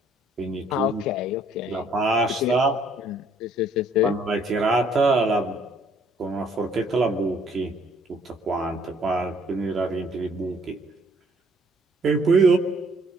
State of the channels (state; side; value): normal; both; correlation 0.63